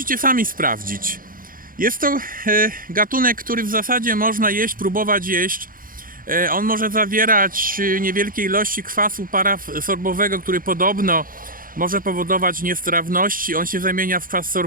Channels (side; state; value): left; late; 0.41 ms